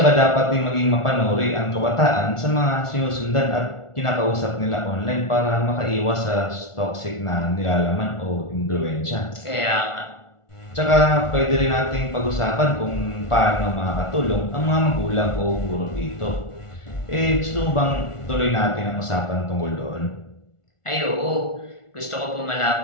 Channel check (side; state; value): right; late; 1.4 ms